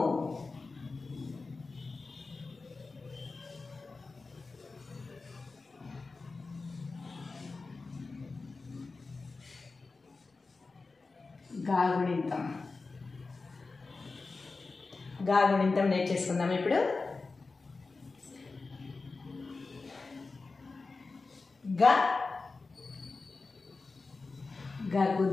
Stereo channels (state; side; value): quieter; right; 3.9 dB